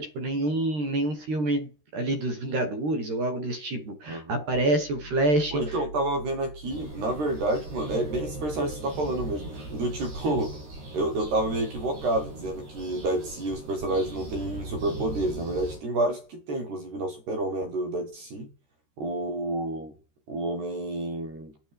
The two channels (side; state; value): left; late; 13 ms